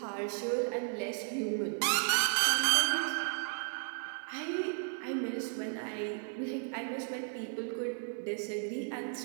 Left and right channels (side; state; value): left; silent; 55 dB below the other